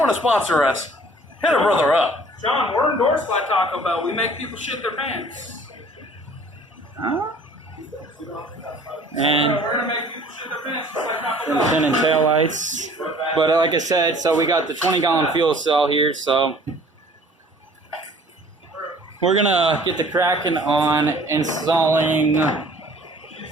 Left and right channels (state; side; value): normal; both; correlation 0.52